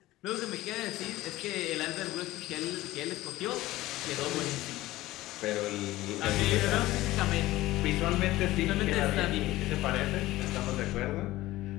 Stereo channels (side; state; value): right; quieter; 17.0 dB